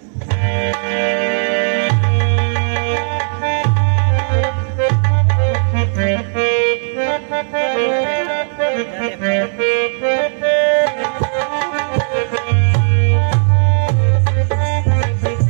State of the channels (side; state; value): left; silent; digital silence